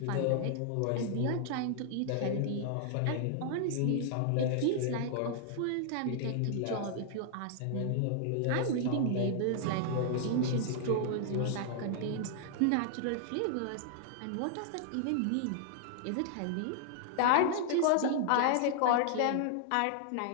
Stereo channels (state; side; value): different; both; correlation -0.01